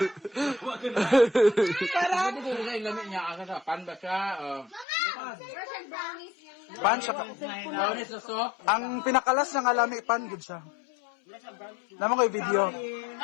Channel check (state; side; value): drops out; right; at 4.9 s